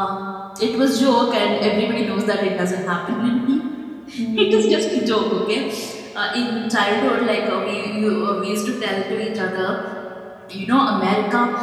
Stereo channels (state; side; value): identical; both; correlation 1.00